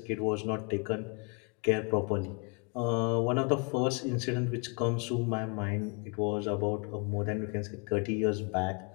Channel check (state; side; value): quieter; right; 34.5 dB